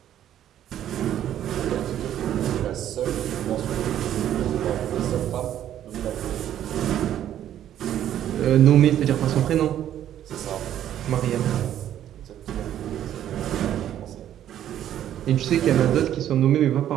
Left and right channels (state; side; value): quieter; left; 11.2 dB